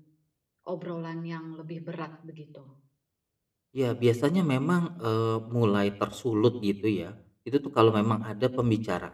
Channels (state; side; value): identical; both; correlation 1.00